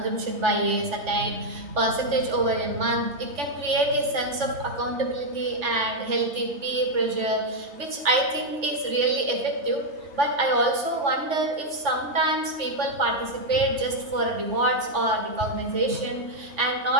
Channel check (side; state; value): left; late; 3.4 ms